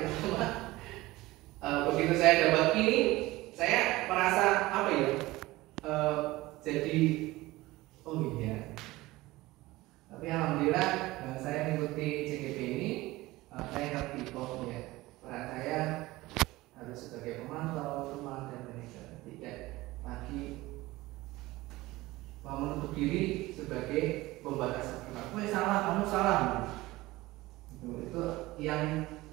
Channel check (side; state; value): left; quieter; 19.1 dB